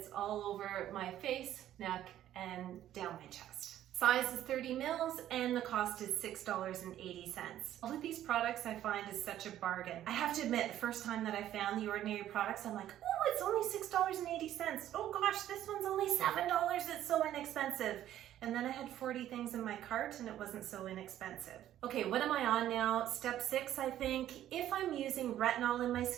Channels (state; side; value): quieter; left; 12.1 dB